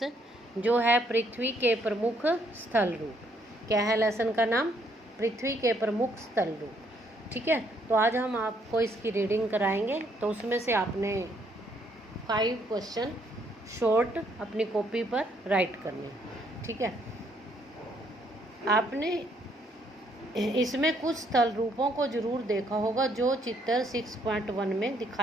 जो है पृथ्वी के प्रमुख स्थल रूप। क्या है लेसन का नाम? पृथ्वी के प्रमुख स्थल रूप। ठीक है, तो आज हम आपको इसकी रीडिंग कराएंगे। तो उसमें से आपने 5 क्वेश्चन शॉर्ट अपनी कॉपी पर राइट करने। ठीक है, आपने इसमें कुछ स्थल रूपों को जरूर देखा होगा जो चित्र 6.1 में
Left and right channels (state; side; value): normal; both; correlation 0.69